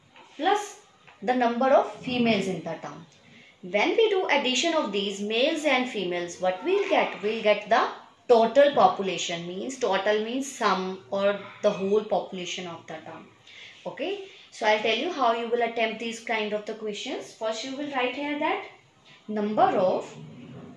plus the number of females in the town. When we do addition of these males and females, what we'll get? We'll get the total population. Means total means sum or the whole population of the town. Okay, so I'll tell you how you will attempt these kind of the questions. First you will write here that number of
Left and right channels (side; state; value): both; identical; correlation 1.00